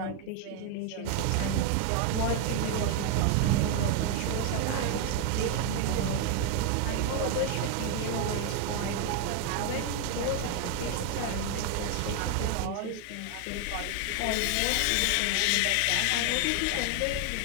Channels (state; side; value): different; both; correlation 0.01